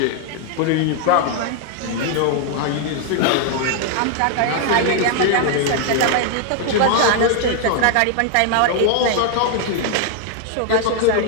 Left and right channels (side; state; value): both; different; correlation 0.00